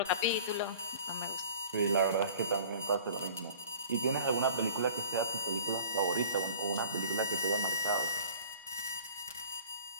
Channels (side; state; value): both; inverted; correlation -0.46